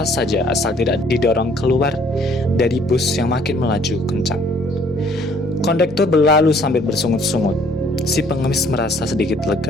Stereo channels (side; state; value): both; normal; correlation 0.61